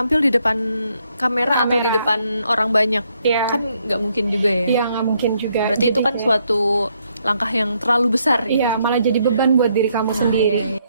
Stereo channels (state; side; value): inverted; both; correlation -0.74